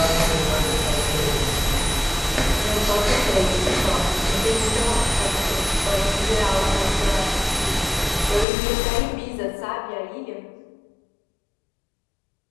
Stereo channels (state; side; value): drops out; right; at 8.5 s